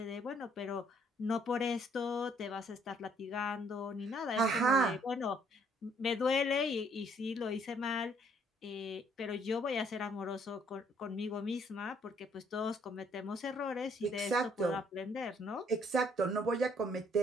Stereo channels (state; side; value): normal; both; correlation 0.65